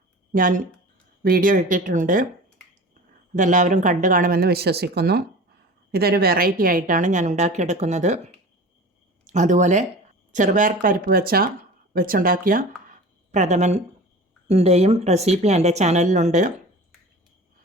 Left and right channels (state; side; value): normal; both; correlation 0.37